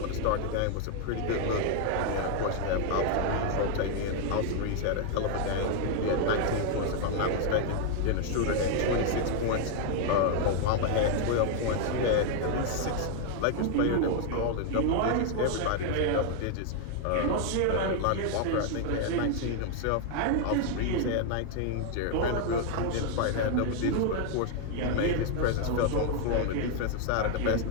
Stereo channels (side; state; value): both; different; correlation 0.00